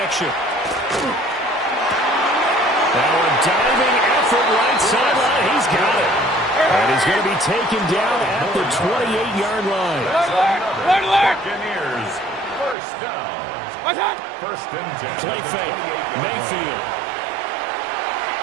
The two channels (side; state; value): left; drops out; at 12.8 s